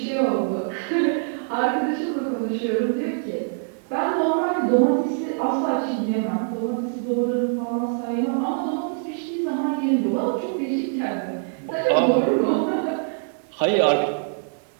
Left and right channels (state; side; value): silent; left; 63 dB below the other